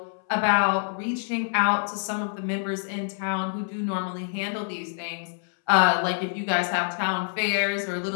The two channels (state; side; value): silent; right; 61 dB below the other